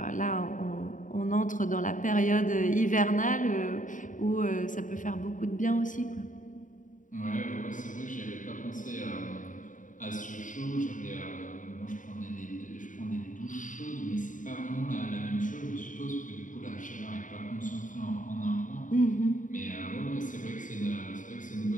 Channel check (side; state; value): right; late; 0.38 ms